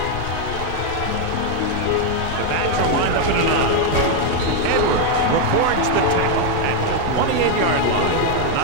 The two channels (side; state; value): both; different; correlation 0.01